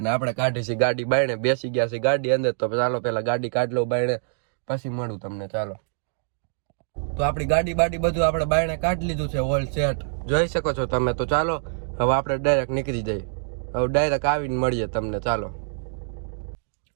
ને આપણે કાઢી છે ગાડી બાયણે, બેસી ગયા છે ગાડી અંદર. તો ચાલો પેલા ગાડી કાઢ લો બાયણે, પછી મળું તમને. ચાલો, તો આપણી ગાડી બાડી બધું આપણે બાયણે કાઢી લીધું છે, ઓલ સેટ જોઈ શકો છો તમે. તો ચાલો હવે આપણે ડાયરેક્ટ નીકળી જઈએ, હવે ડાયરેક્ટ આવીને મળીએ તમને. ચાલો,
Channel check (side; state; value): left; silent; digital silence